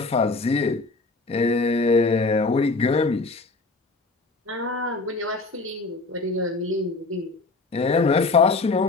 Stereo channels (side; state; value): right; quieter; 3.6 dB